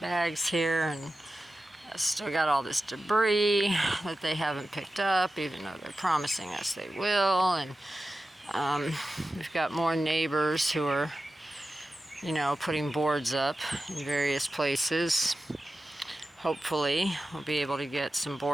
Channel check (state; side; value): normal; both; correlation 0.93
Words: here, and I still got all this debris that they haven't picked up, even though they're promising us they will. And we've got more neighbors who are, putting boards up in various places. Hopefully we'll be able to get some